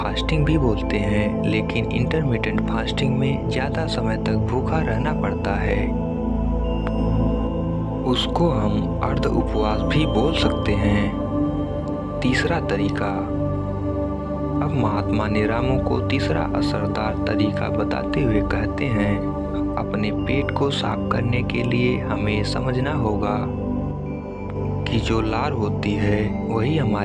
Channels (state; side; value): identical; both; correlation 1.00